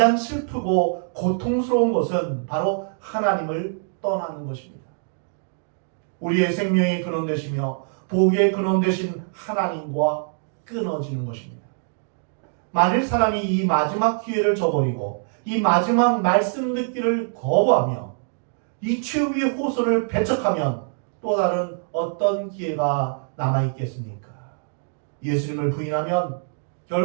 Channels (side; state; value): left; silent; digital silence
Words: 슬프고 고통스러운 것은 바로 하나님을 떠나는 것입니다. 우리의 생명의 근원 되시며 복의 근원 되신 하나님과 끊어지는 것입니다. 만일 사람이 이 마지막 기회를 저버리고 이 마지막 말씀 듣기를 거부하며 이 최후의 호소를 배척하면 또 다른 어떤 기회가 남아있겠습니까? 예수님을 부인하면